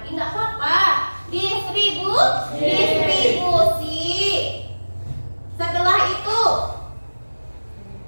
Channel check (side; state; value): both; inverted; correlation -1.00